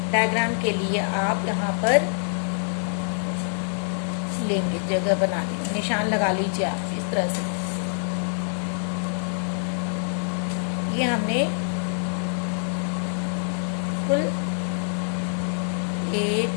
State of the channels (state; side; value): silent; right; digital silence